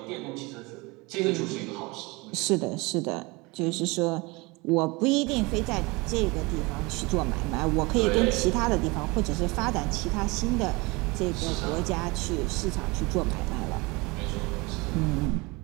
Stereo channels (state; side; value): quieter; left; 25.3 dB